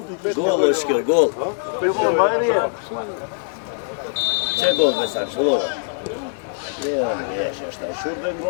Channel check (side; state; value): right; silent; 64 dB below the other